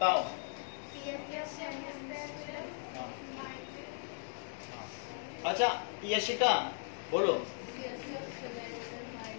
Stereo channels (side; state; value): right; silent; digital silence